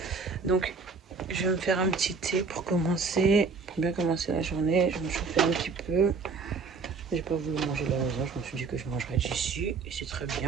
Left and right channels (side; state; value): left; quieter; 4.7 dB